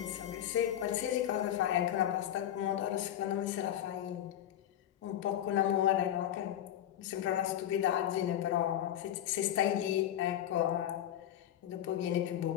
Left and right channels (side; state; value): right; quieter; 11.3 dB